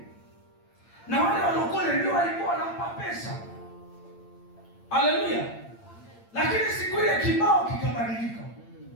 na wale walokole ndio walikuwa wanampa pesa. Haleluya! Lakini siku ile kibao kikabadilika.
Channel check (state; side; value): late; right; 8.8 ms